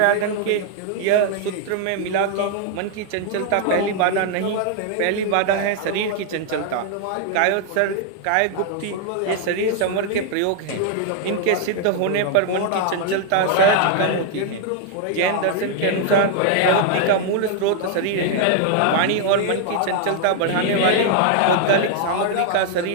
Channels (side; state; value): both; different; correlation 0.00